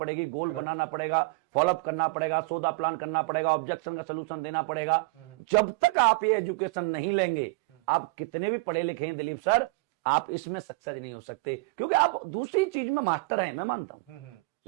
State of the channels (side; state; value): left; quieter; 27.2 dB